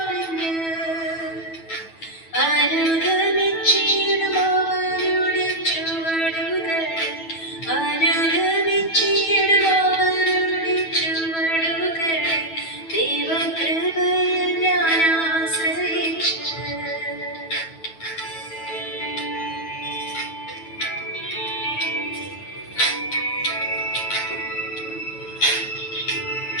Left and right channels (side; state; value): right; late; 9.2 ms